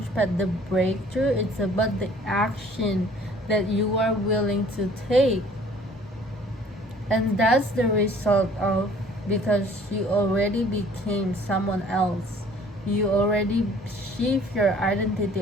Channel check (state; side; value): normal; both; correlation 0.54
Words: pad, the breakthrough, it's about the action that you are willing to take. And that's the result of, because you already became someone else, you already shift your